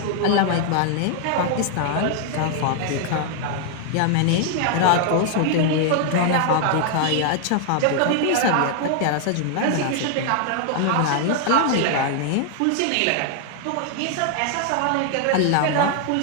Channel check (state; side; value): different; both; correlation 0.00